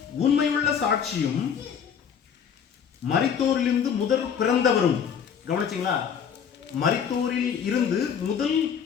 உண்மையுள்ள சாட்சியும் மரித்தோரிலிருந்து முதல் பிறந்தவரும். கவனிச்சீங்களா? மரித்தோரில் இருந்து முதல்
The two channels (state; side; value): quieter; right; 7.5 dB